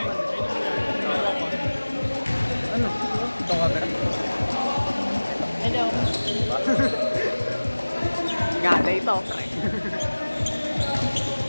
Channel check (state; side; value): inverted; both; correlation -1.00